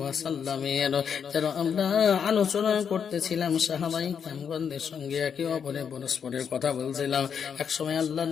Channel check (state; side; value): quieter; right; 7.2 dB